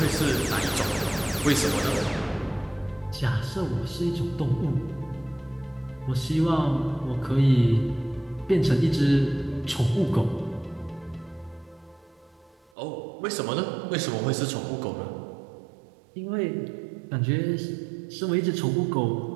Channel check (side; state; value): left; drops out; at 12.6 s